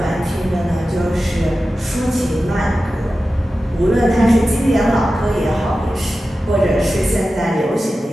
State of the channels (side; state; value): both; normal; correlation 0.94